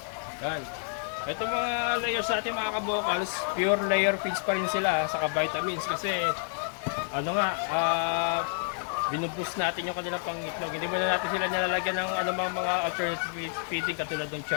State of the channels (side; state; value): right; silent; 58 dB below the other